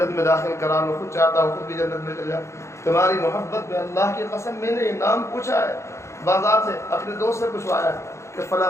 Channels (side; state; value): right; late; 0.14 ms